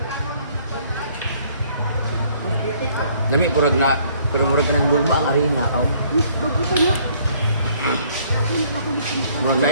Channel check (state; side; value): inverted; both; correlation -0.62